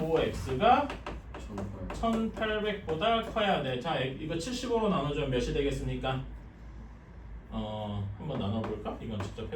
1800보다 커야 돼. 자 이거 75로 나눠주면 몇이 되겠습니까? 한번 나눠볼까? 이건 직접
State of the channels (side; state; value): both; identical; correlation 1.00